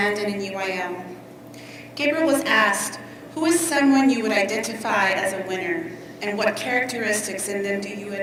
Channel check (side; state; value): both; identical; correlation 1.00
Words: and in UIL. Gabriel was asked, who is someone you would identify as a winner, and what characteristics in them do you